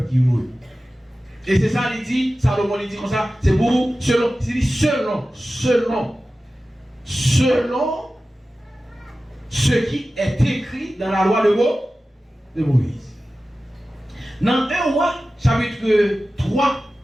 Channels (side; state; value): both; normal; correlation 0.95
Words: qui roule. Et c'est ça, il dit, Salomon il dit comme ça, c'est pour, selon ce qui est écrit dans la loi de Moïse. Dans 1 roi, chapitre 3,